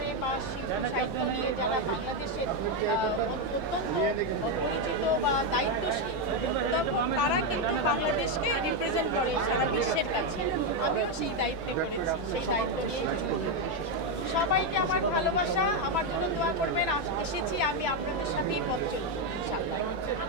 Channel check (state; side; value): normal; both; correlation 0.05